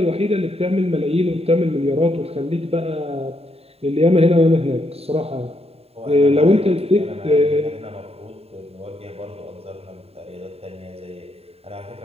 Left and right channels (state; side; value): late; left; 0.29 ms